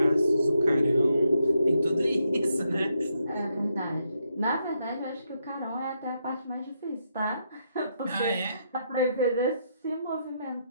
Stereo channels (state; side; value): inverted; both; correlation -0.79